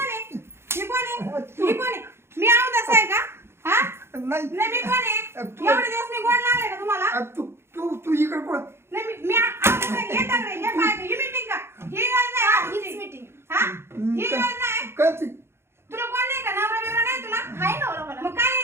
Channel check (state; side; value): late; left; 0.12 ms